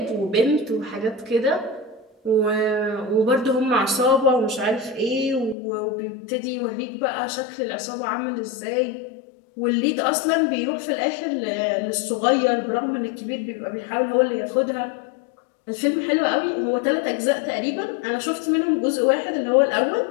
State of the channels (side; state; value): right; drops out; at 5.6 s